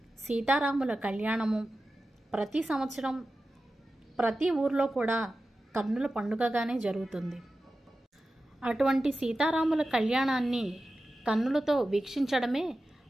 సీతారాముల కళ్యాణము ప్రతి సంవత్సరం ప్రతి ఊర్లో కూడా కన్నుల పండుగగానే జరుగుతుంది. అటువంటి సీతారాముల కళ్యాణాన్ని కన్నులతో వీక్షించడమే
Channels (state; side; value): normal; both; correlation 0.93